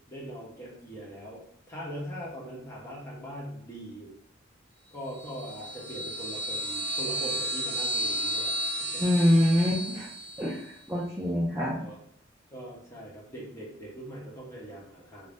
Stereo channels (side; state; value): both; normal; correlation 0.65